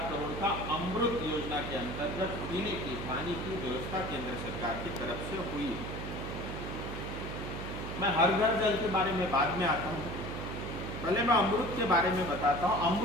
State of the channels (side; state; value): right; noise; hum, 6 dB below the sound